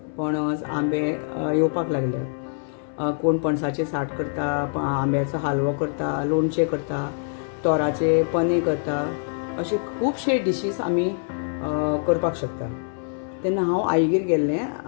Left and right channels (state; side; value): silent; right; 62 dB below the other